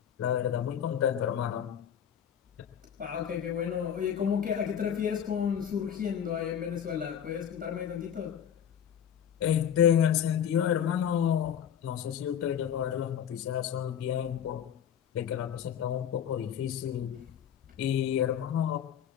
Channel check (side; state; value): right; quieter; 9.0 dB